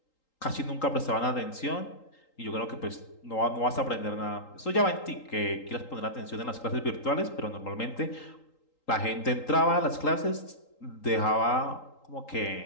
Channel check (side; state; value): right; late; 3.8 ms